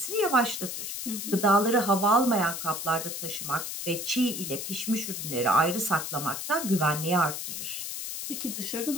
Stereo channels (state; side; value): noise; left; hiss, 5 dB below the sound